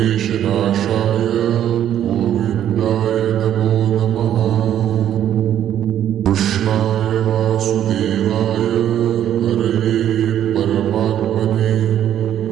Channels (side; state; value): left; quieter; 10.7 dB